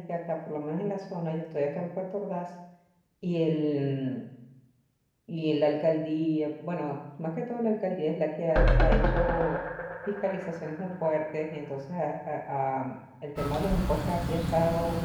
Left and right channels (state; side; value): identical; both; correlation 1.00